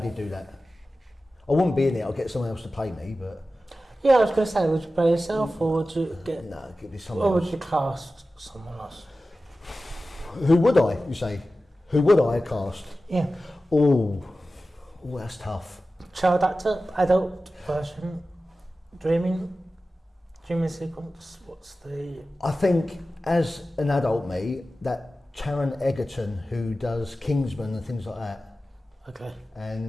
do that. I wouldn't be in it. I'll get someone else to play me, but Yeah, I was going to say, would you play yourself, or would you get, no, give me someone or would else. you cast someone else? Who would I? You say? Who would I cast? Yeah. Oh, that's tough. Child actor, adult version, dreaming sequence. What's the? I think as an adult me, that Taron Egerton who does Kingsman and things like that, Okay.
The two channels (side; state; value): both; normal; correlation 0.94